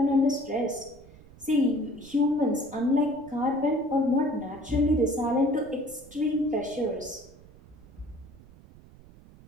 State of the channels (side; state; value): right; noise; rumble, 22 dB below the sound